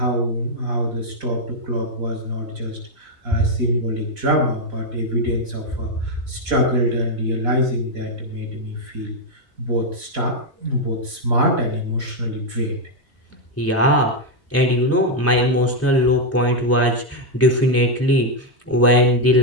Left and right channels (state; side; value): normal; both; correlation 0.02